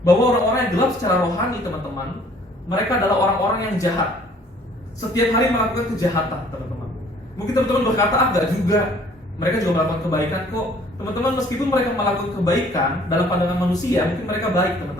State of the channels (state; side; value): normal; both; correlation 0.56